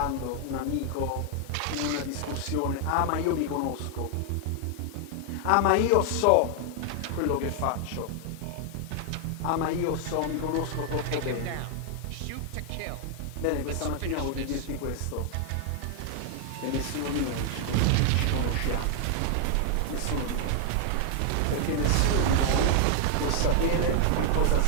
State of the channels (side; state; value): both; different; correlation 0.00